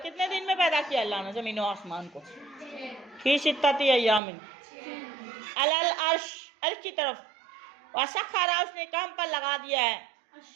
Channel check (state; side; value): drops out; left; at 4.2 s